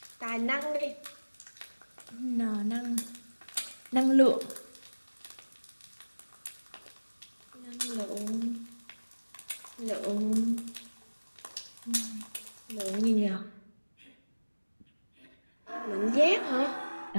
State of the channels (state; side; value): inverted; both; correlation -1.00